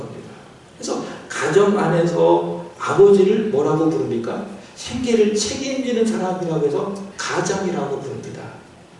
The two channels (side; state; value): both; identical; correlation 1.00